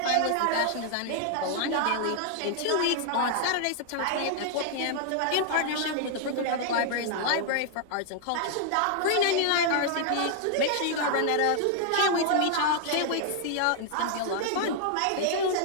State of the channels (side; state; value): both; different; correlation 0.00